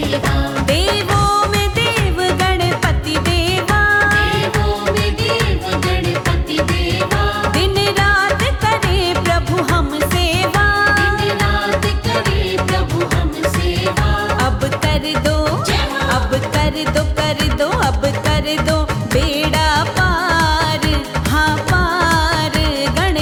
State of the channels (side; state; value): both; identical; correlation 1.00